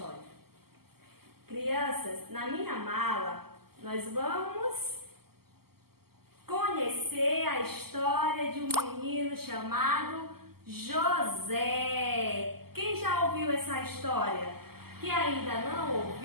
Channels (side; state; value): left; late; 0.95 ms